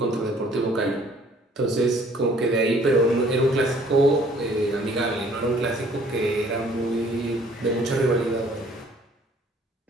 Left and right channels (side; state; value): both; normal; correlation 0.58